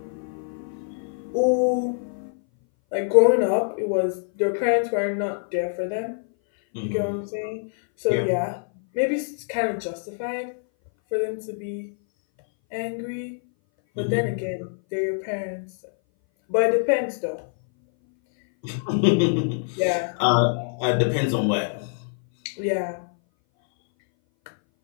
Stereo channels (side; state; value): right; silent; 59 dB below the other